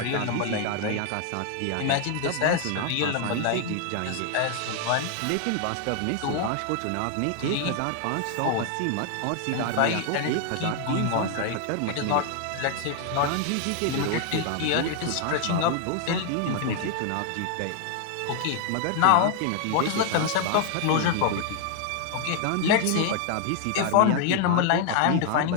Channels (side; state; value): both; different; correlation 0.00